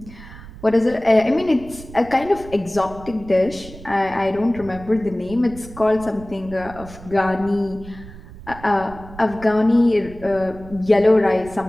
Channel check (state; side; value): noise; right; rumble, 17 dB below the sound